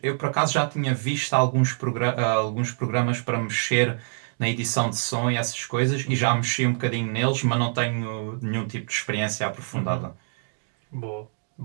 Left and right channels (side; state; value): left; silent; 61 dB below the other